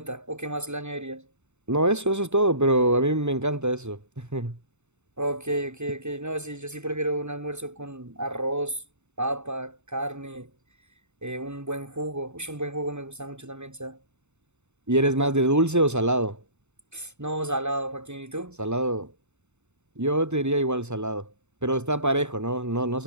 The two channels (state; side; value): late; left; 0.82 ms